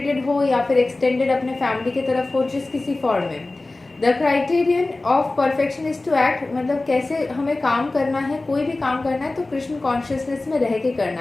हो या फिर एक्सटेंडेड अपने फैमिली की तरफ हो, जिस किसी फॉर्म में. The criterion of perfection is to act, मतलब कैसे हमें काम करना है, कोई भी काम करना है तो कृष्ण कॉन्शियसनेस में रह के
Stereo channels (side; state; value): right; quieter; 3.1 dB